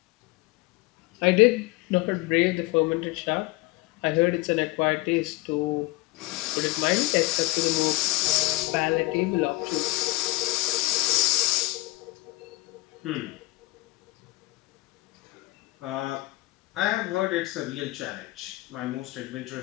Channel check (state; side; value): quieter; right; 21.0 dB